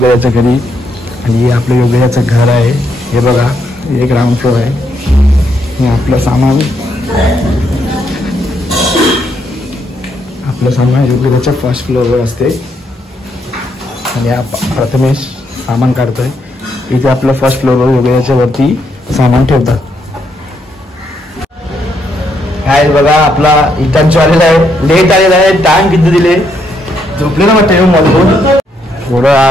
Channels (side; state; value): both; normal; correlation 0.76